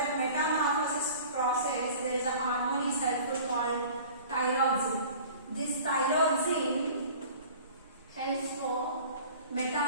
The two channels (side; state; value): both; inverted; correlation -0.44